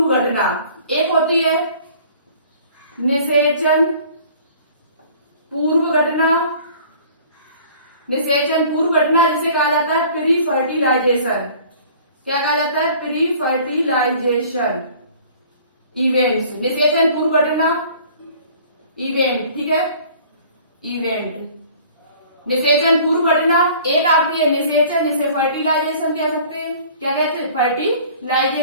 घटना। एक होती है निषेचन पूर्व घटना जिसे कहा जाता है प्री फर्टिलाइजेशन। क्या कहा जाता है? Pre fertilization events. निषेचन पूर्व घटना इवेंट, ठीक है, इवेंट। निषेचन पूर्व घटना एक आपकी है निषेचन, जिसे फर्टिलाइजेशन कह सकते हैं। क्या कहते हैं?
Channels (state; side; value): inverted; both; correlation -0.50